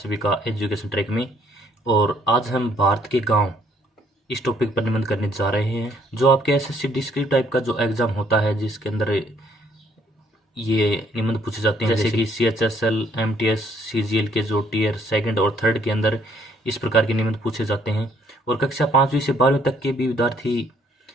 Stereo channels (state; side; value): normal; both; correlation 0.65